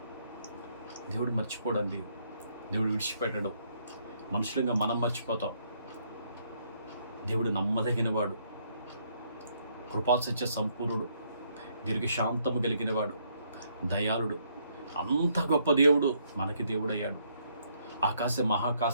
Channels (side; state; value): both; inverted; correlation -0.71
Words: దేవుడు మర్చిపోడండి, దేవుడు విడిచిపెట్టడు. మనుషులంగా మనం మర్చిపోతాం. దేవుడు నమ్మదగినవాడు, కృపాసత్య సంపూర్ణుడు, దీర్ఘశాంతము కలిగినవాడు, దయాళుడు. అంత గొప్ప దేవుడు మనకి దేవుడయ్యాడు.